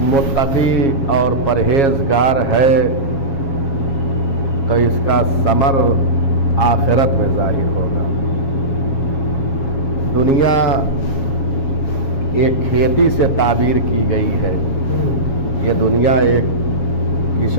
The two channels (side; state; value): right; late; 7.3 ms